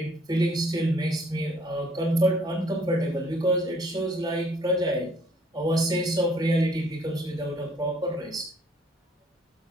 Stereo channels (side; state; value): both; normal; correlation 0.61